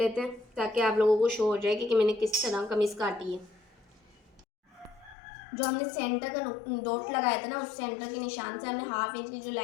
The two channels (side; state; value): right; drops out; at 5.2 s